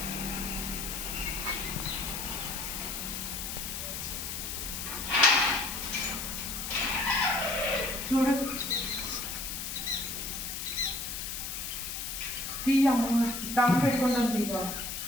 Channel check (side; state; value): left; noise; hiss, 5 dB below the sound